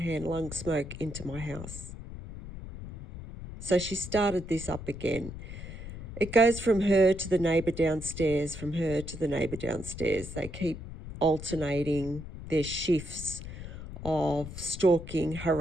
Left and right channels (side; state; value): left; noise; rumble, 11 dB below the sound